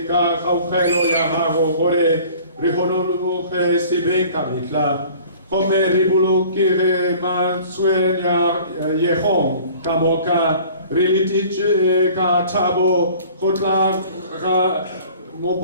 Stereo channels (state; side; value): inverted; both; correlation -0.48